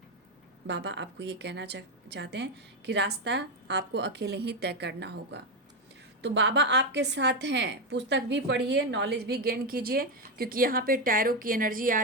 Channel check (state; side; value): normal; both; correlation 0.09